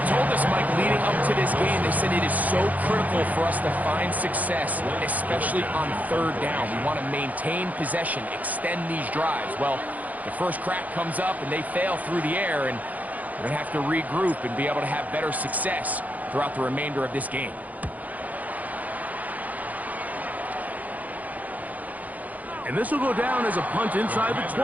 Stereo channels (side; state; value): left; late; 0.077 ms